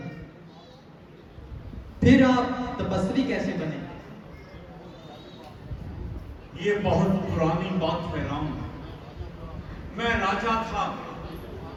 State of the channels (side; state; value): both; identical; correlation 1.00